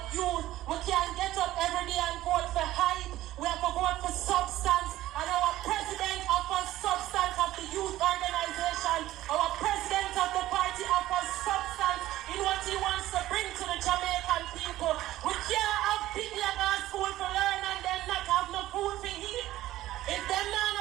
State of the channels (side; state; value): left; quieter; 15.1 dB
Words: youth, we can't get up every day and vote for hype. We have to vote for substance, and our president offers substance of the youth organization. Our president of the party offers substance in what he wants to bring to the Jamaican people. We can't have people that go to school for learn and then not have no food for eat. If them not